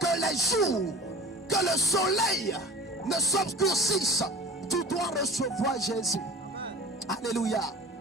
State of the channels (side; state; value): both; normal; correlation 0.38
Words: les jours, que le soleil ne s'obscurcisse. Tu dois recevoir Jésus. Alléluia.